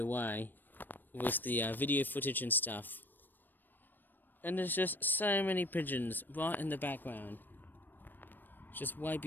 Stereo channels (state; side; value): late; right; 0.092 ms